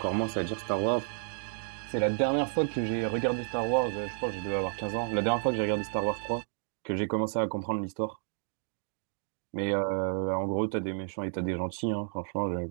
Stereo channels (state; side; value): silent; left; digital silence